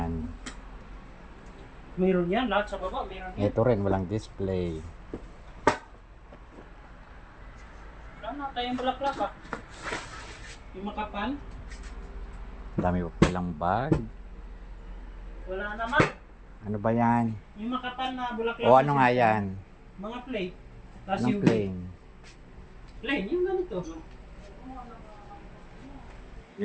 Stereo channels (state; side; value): identical; both; correlation 1.00